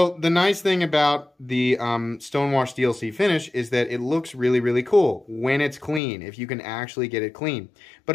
the nice thing about the Stonewash DLC finish is that it looks really, really cool when it's clean, if you can actually get it clean. But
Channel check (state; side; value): drops out; right; at 6.0 s